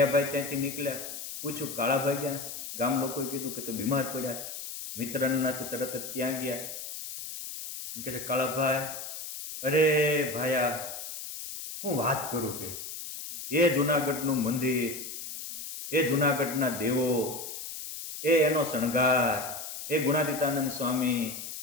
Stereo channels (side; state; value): left; noise; hiss, 9 dB below the sound